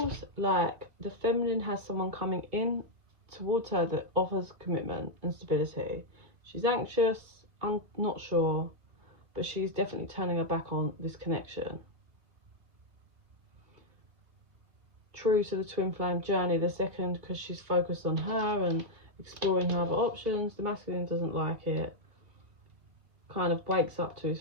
like the feminine has someone coming in towards her that offers commitment and stability. She's anxious, I'm not sure, but she's definitely turning her back on this connection. True to the twin flame journey, the second, because she's focused on her and exploring her other options. The masculine doesn't like it, kind of wakes up to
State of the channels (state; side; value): late; left; 2.1 ms